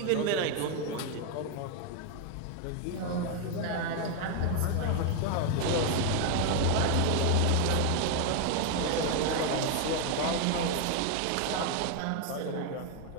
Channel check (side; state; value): both; different; correlation 0.01